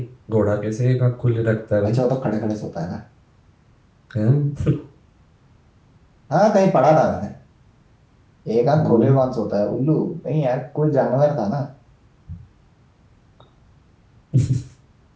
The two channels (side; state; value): both; identical; correlation 1.00